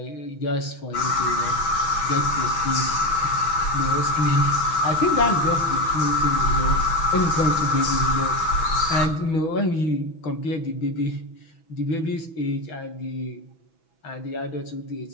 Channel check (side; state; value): right; late; 6.1 ms